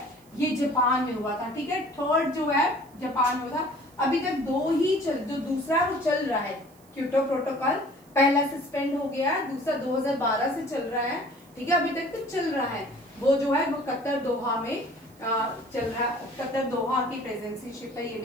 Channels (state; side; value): noise; right; hiss, 29 dB below the sound